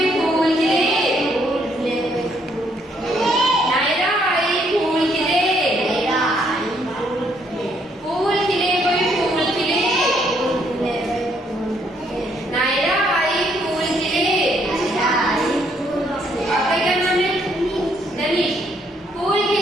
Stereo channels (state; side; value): normal; both; correlation 0.70